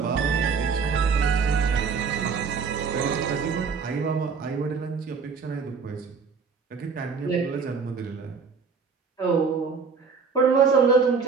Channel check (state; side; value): quieter; left; 5.4 dB